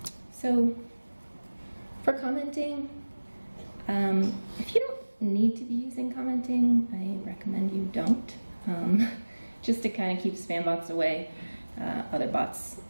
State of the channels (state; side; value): inverted; both; correlation -1.00